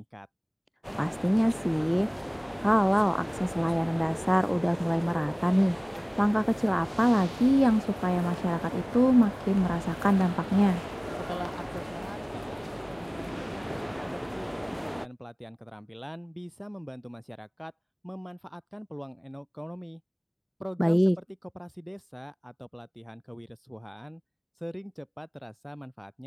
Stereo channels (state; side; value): identical; both; correlation 1.00